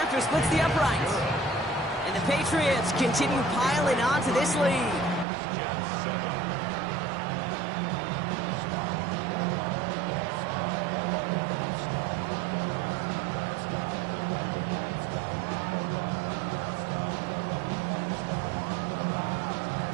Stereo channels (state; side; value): drops out; left; at 5.2 s